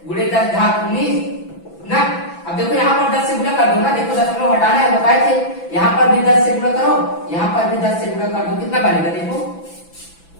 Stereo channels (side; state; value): right; late; 6.0 ms